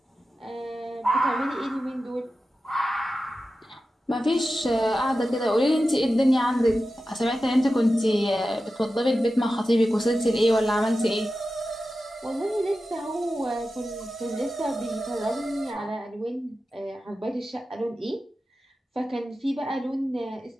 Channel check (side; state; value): both; normal; correlation 0.93